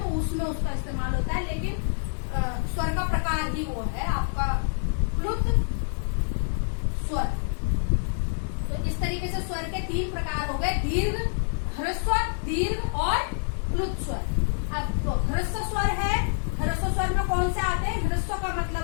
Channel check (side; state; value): right; silent; 60 dB below the other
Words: उसमें उसका इस्तेमाल होता है, लेकिन स्वर का प्रकार ही वो है आपका प्लुत स्वर। तो इस तरीके से स्वर के 3 प्रकार हो गए, दीर्घ, ह्रस्व, दीर्घ और प्लुत स्वर। अब तो ह्रस्व स्वर है, ह्रस्व स्वर में कौन से आते हैं? ह्रस्व का